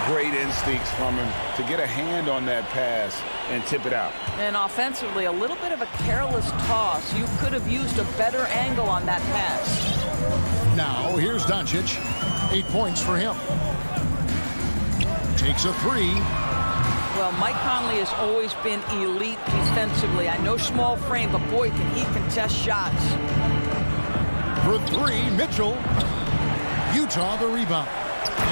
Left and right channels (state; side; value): inverted; both; correlation -1.00